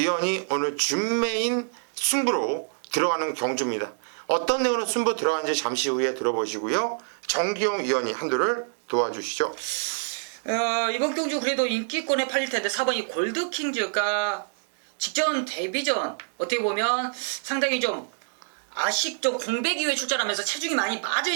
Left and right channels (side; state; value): left; silent; digital silence